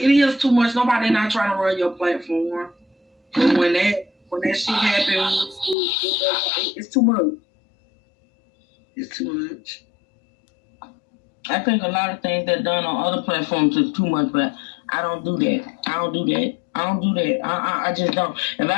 too much. Nobody not trying to run your platform. But when that shit happens, it's too much. It's too much. I think a lot of things that done on other platforms is too much, but I don't do that. I just don't. If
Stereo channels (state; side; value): drops out; right; at 5.8 s